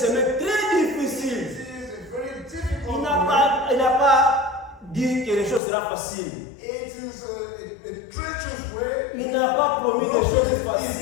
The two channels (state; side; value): drops out; right; at 5.6 s